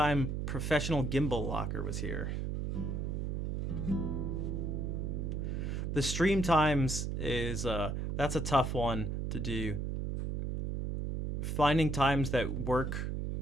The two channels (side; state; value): right; noise; hum, 1 dB below the sound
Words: Professional Gimbal Locker was here? The stream times is that's a tough one to do. Finding times that work